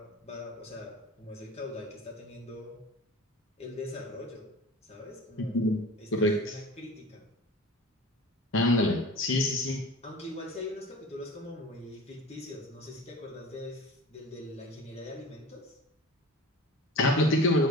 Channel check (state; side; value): normal; both; correlation 0.38